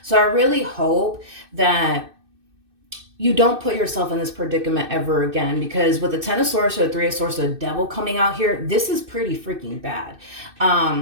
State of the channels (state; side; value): late; left; 2.6 ms